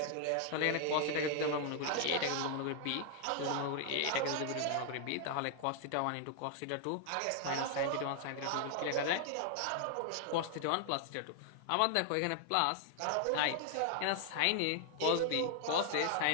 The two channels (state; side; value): different; both; correlation 0.00